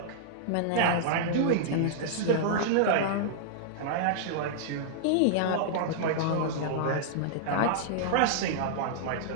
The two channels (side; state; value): both; different; correlation -0.02